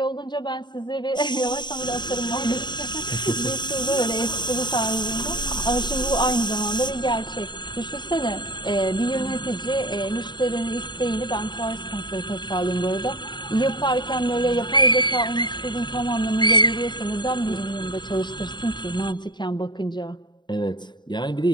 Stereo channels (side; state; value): right; late; 0.22 ms